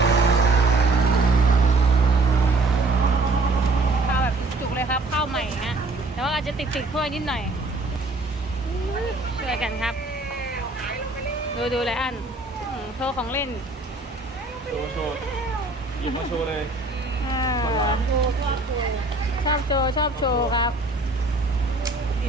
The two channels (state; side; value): quieter; left; 3.2 dB